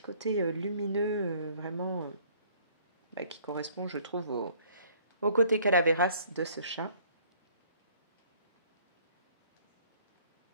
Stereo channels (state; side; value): inverted; both; correlation -0.59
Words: côté lumineux, vraiment, bah, qui correspond, je trouve, au côté calaveras de ce chat.